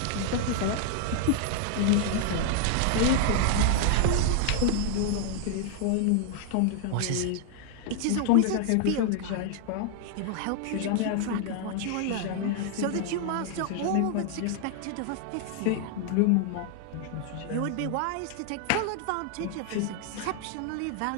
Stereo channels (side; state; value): both; different; correlation 0.00